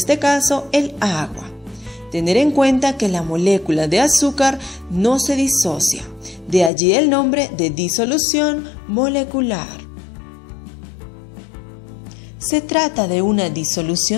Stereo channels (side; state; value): right; drops out; at 6.7 s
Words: caso el agua. Tener en cuenta que la molécula de azúcar no se disocia. de allí el nombre de disolución molecular. Se trata de una